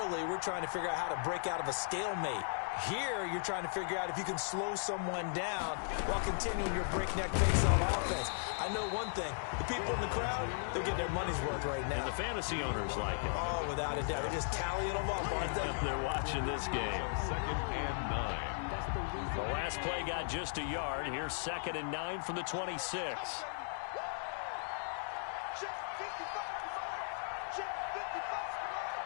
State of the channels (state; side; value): silent; right; digital silence